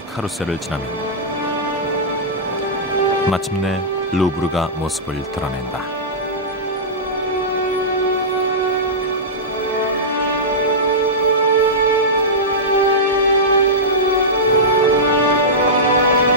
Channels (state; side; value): normal; both; correlation -0.13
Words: 카루셀을 지나면 마침내 루브르가 모습을 드러낸다.